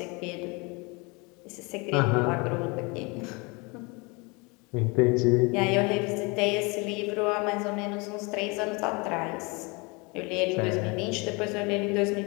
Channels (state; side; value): quieter; right; 28.5 dB